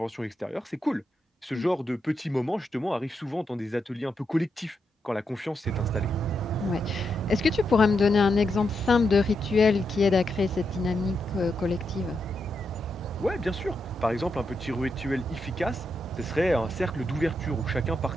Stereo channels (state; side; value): normal; both; correlation 0.83